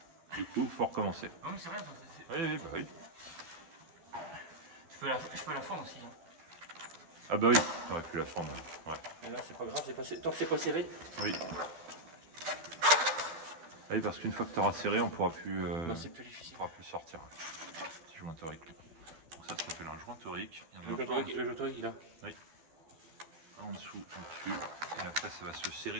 Du coup, faut recommencer. Non mais c'est rien, ça, Oui, oui, bah oui. je peux la fendre aussi. Hein. Ah bah oui, t'aurais pu la fendre. Ouais. Mais là c'est pas grave, tant que c'est pas serré. Oui. Ah oui, parce qu'une fois que tu auras serré, on pourra plus, Bah, c'est plus difficile. pourra plus le sortir. Petit joint torique. Donc ça s'appelle un joint torique. Il y en a Le un joint torique, il a. un en dessous, en dessus, et après ça va se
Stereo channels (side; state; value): left; late; 12 ms